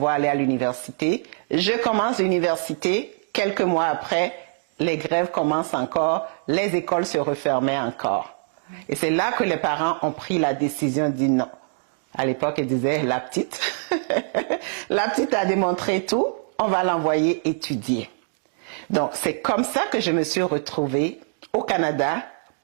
aller à l'université, je commence l'université. Quelques mois après, les grèves commencent encore, les écoles se refermaient encore. Et c'est là que les parents ont pris la décision de dire non. À l'époque, ils disaient, la petite, la petite a démontré tout, on va l'envoyer étudier. Donc, c'est comme ça que je me suis retrouvée au Canada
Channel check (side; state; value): left; silent; digital silence